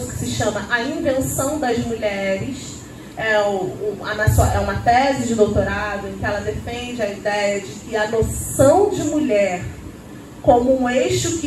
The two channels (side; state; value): both; identical; correlation 1.00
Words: que se chama A Invenção das Mulheres. É uma tese de doutorado em que ela defende a ideia de que a noção de mulher como um eixo